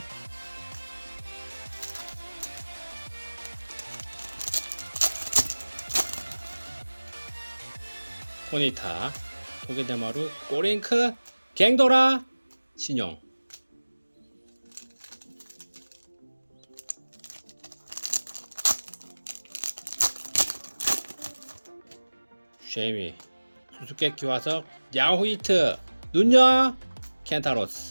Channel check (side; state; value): both; inverted; correlation -1.00